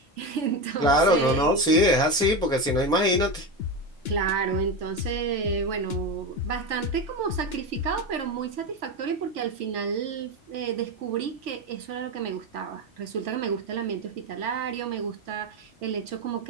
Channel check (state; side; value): normal; both; correlation 0.18